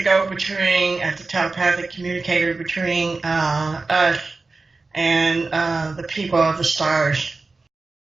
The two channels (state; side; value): quieter; left; 3.7 dB